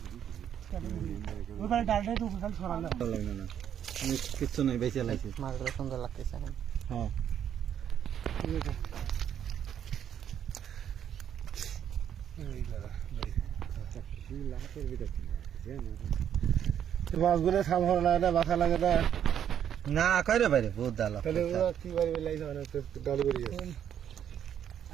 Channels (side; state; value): left; quieter; 9.4 dB